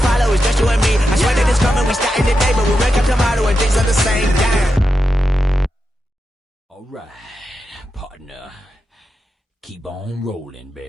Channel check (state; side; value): normal; both; correlation 0.88